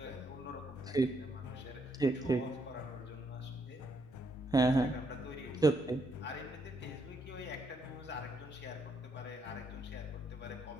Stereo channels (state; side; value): normal; both; correlation 0.75